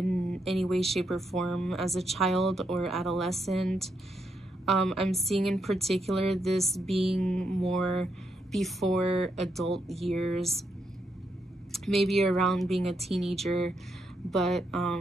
any way, shape, or form as a child or adolescent. I'm seeing in particular this being more before adult years, maybe around being a teenager, but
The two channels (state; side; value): normal; both; correlation 0.80